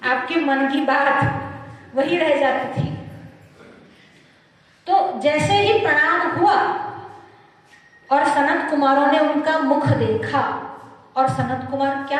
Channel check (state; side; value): identical; both; correlation 1.00